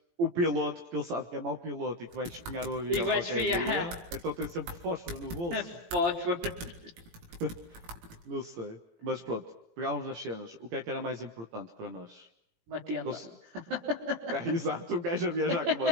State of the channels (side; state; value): left; late; 18 ms